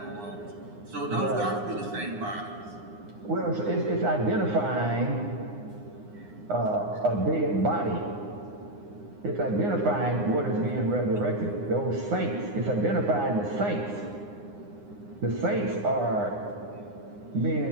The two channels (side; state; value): left; late; 9.7 ms